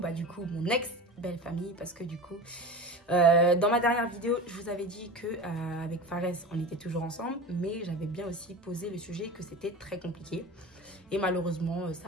du coup, mon ex-belle famille, parce que du coup, dans ma dernière vidéo, je vous avais dit que avec Fares, on était toujours ensemble, mais j'avais bien aussi posé le sujet que c'était très compliqué. Et malheureusement,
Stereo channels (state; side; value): normal; both; correlation 0.31